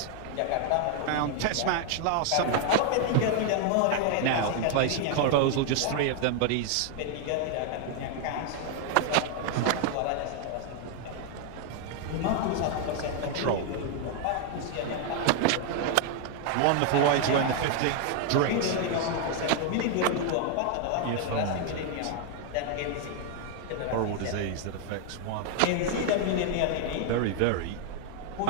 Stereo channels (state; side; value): different; both; correlation 0.00